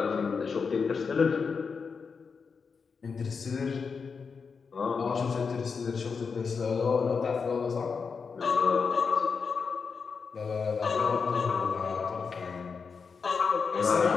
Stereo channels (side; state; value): right; quieter; 5.4 dB